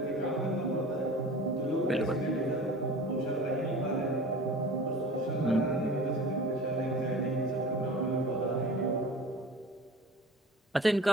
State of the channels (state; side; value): normal; both; correlation 0.40